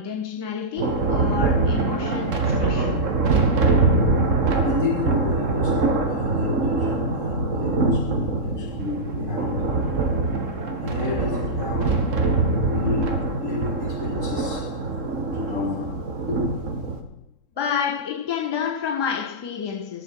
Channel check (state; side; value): late; left; 3.7 ms